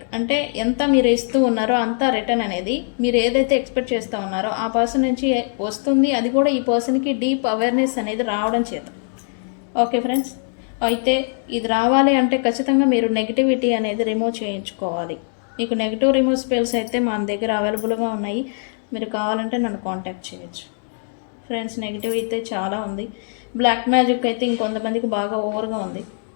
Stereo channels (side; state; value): right; silent; 65 dB below the other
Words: అంటే ఎంత మీరు ఇస్తూ ఉన్నారో అంత రిటర్న్ అనేది మీరు ఏదైతే ఎక్స్పెక్ట్ చేస్తూ ఉన్నారో ఆ పర్సన్ నుంచి వస్తుంది. అది కూడా ఈ పర్సన్కి డీప్ అవేర్నెస్ అనేది రావడం చేత. ఓకే ఫ్రెండ్స్, అయితే ఇది రావాలి అంటే ఖచ్చితంగా మీరు నెగిటివిటీ అనేది రిమూవ్ చేయించుకోవాలి. మీకు నెగిటివ్ రిమూవ్ స్పెల్స్ అయితే మన దగ్గర అవైలబుల్గా ఉన్నాయి, మీరు కావాలంటే నన్ను కాంటాక్ట్ చేయొచ్చు. ఫ్రెండ్స్, నెగిటివ్ అయితే చాలా ఉంది. బ్లాక్ మ్యాజిక్ అయితే ఇంకొంతమందికి బాగా ఓవర్గా ఉంది.